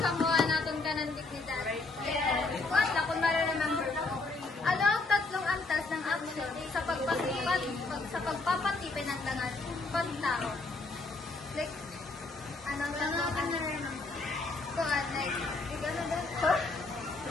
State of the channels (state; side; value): quieter; right; 3.5 dB